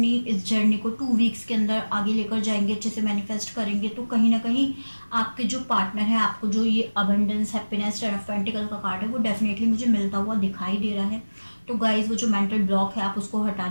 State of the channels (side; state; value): both; inverted; correlation -1.00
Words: इस जर्नी को 2 वीक्स के अंदर आगे लेकर जाएंगे, अच्छे से मैनिफेस्ट करेंगे, तो कहीं ना कहीं आपके जो पार्टनर है, आपको जो ये abundance happiness ten of pentacle का कार्ड है वो डेफिनेटली मुझे मिलता हुआ दिखाई दे रहा है। तो गाइज वो जो मेंटल ब्लॉक है आप उसको